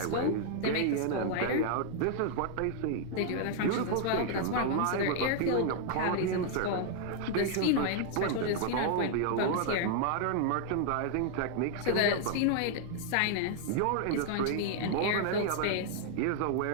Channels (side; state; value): both; different; correlation 0.00